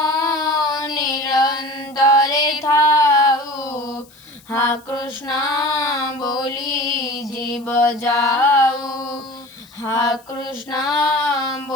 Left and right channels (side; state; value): left; noise; hiss, 27 dB below the sound